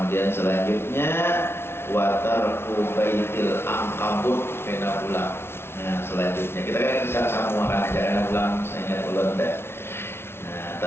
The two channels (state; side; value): late; right; 0.12 ms